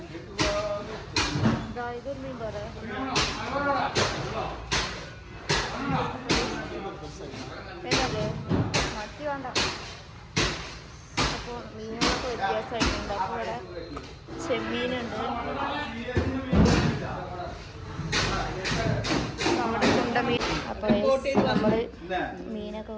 ഇതൊരു മീൻ പറ. ഏതത്? മത്തി വേണ്ട. അപ്പോൾ മീനുകളൊക്കെ വ്യത്യാസമായിട്ടുണ്ട്. അപ്പോൾ ഇവിടെ ചെമ്മീനുണ്ട്. നമ്മുടെ ചുണ്ടമീൻ. അപ്പോൾ നമ്മൾ മീനൊക്കെ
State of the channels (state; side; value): identical; both; correlation 1.00